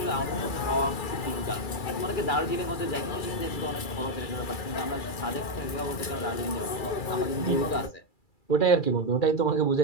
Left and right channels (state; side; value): late; right; 2.3 ms